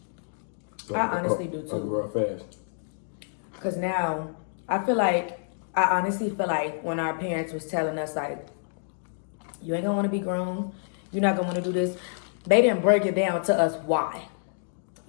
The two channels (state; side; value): silent; right; digital silence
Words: I honestly do, too. Real fast. Because now, I honestly feel like when our parents was telling us, like, you ain't gonna want to be grown. You're not gonna want to do this. They didn't break it down to us why.